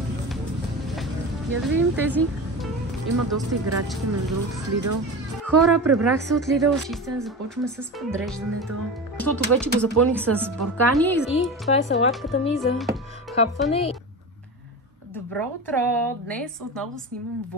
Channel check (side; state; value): both; normal; correlation 0.27